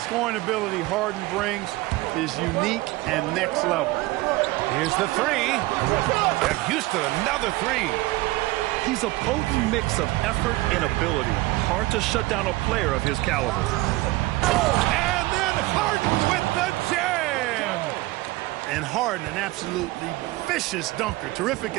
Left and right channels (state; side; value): quieter; left; 19.8 dB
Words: ability Harden brings is unique and next level. Here's the 3. And Houston, another 3. He's a potent mix of effort and ability. Hard to shut down a player of his caliber. And then Harden with the jam. And Harden, an absolutely vicious dunker. Terrific